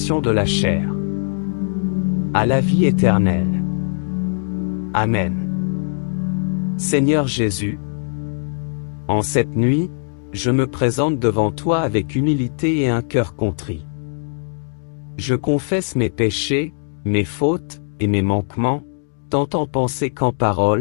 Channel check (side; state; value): right; silent; digital silence